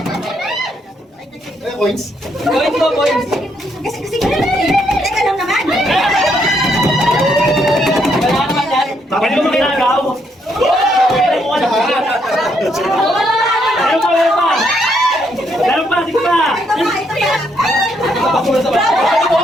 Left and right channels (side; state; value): both; normal; correlation 0.74